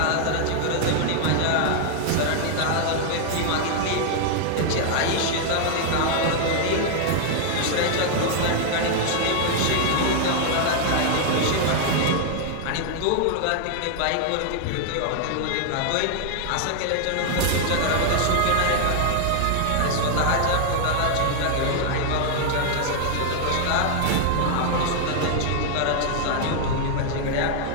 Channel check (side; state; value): both; different; correlation 0.00